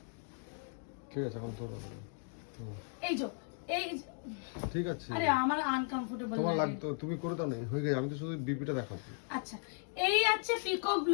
ঠিক আছে, এখন তোর এই যে এই ঠিক আছে। আরে আমার আনকমফোর্টেবল তোমার লাগতো, তুমি করে দাও না, হয়ে গেছে। আমি তো শুধু বিপিটা দেখাবো। আচ্ছা, এই আছে পিকক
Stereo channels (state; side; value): silent; right; 54 dB below the other